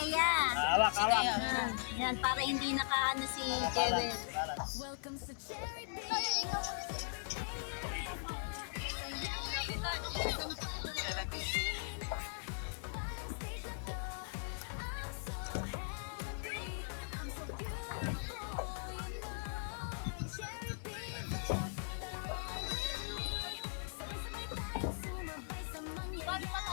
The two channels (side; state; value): right; silent; digital silence